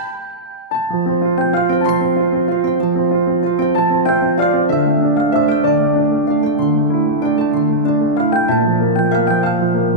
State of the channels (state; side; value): late; right; 33 ms